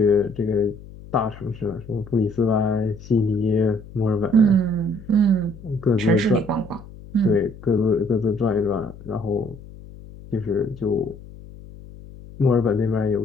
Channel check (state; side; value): noise; left; hum, 17 dB below the sound